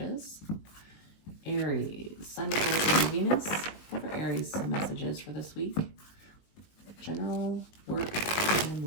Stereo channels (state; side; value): late; right; 19 ms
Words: Aries, Sun, Moon, and Venus. What are Aries' messages for this week? General, work, and